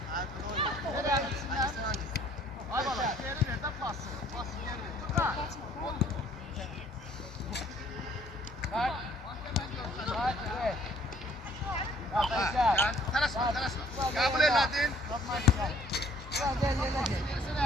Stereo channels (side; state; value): both; normal; correlation 0.59